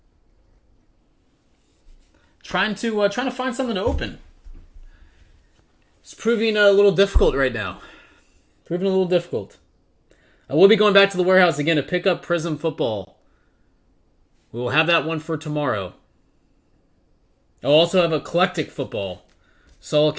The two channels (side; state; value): both; identical; correlation 1.00